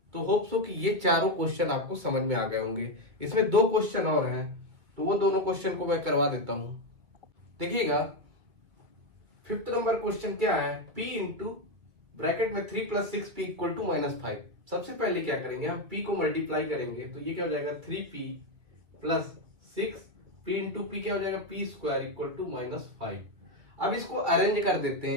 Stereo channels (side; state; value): left; late; 2.3 ms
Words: तो होप सो कि ये चारों क्वेश्चन आपको समझ में आ गए होंगे। इसमें 2 क्वेश्चन और हैं, तो वो दोनों क्वेश्चन को मैं करवा देता हूं। देखिएगा 5th नंबर क्वेश्चन क्या है, p इंटू ब्रैकेट में 3 प्लस 6p इक्वल टू -5। सबसे पहले क्या करेंगे, हम p को मल्टीप्लाई करेंगे, तो ये क्या हो जाएगा 3p plus 6p into p क्या हो जाएगा p स्क्वायर इक्वल टू -5। अब इसको अरेंज कर देते